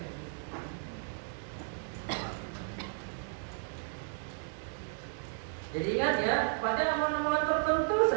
Jadi ingat ya, pada amalan-amalan tertentu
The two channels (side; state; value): left; silent; 55 dB below the other